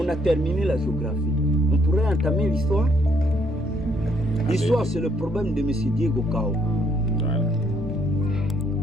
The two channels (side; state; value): both; normal; correlation 0.69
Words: a terminé la géographie. On pourrait entamer l'histoire. L'histoire, c'est le problème de M. Diego Cao. Voilà.